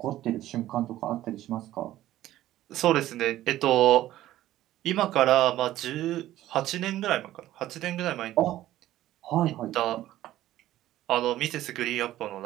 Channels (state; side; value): quieter; left; 14.2 dB